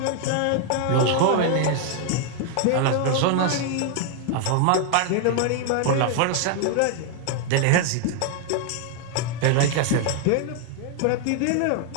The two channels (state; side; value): different; both; correlation 0.00